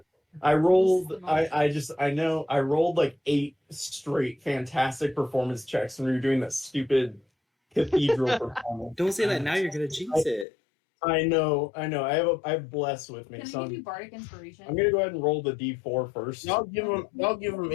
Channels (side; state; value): right; drops out; at 10.5 s